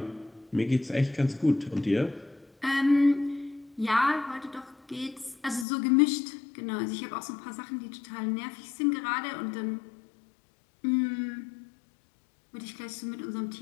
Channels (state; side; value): drops out; right; at 5.7 s